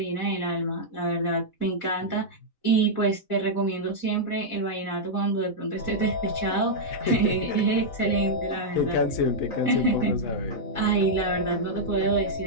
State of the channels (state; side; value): late; right; 4.0 ms